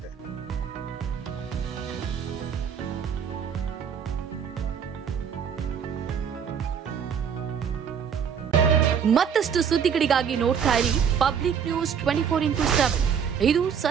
ಮತ್ತಷ್ಟು ಸುದ್ದಿಗಳಿಗಾಗಿ ನೋಡ್ತಾ ಇರಿ ಪಬ್ಲಿಕ್ ನ್ಯೂಸ್ 24x7. ಇದು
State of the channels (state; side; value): quieter; left; 7.5 dB